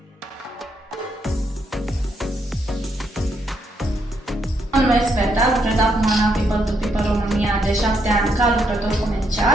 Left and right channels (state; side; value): normal; both; correlation 0.76